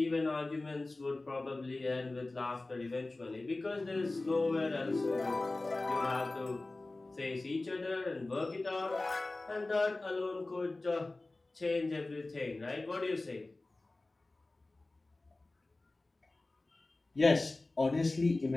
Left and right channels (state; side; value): quieter; right; 3.0 dB